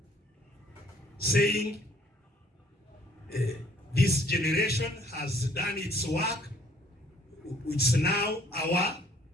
saying this generation has done its work, it's now our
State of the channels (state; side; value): normal; both; correlation 0.60